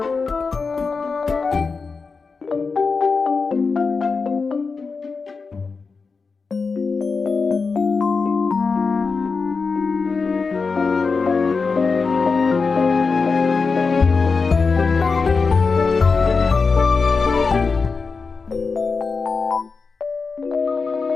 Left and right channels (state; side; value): quieter; right; 4.6 dB